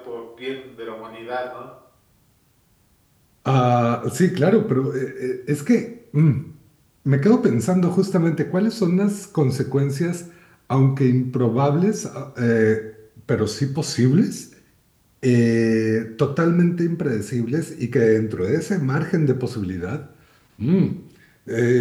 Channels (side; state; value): both; identical; correlation 1.00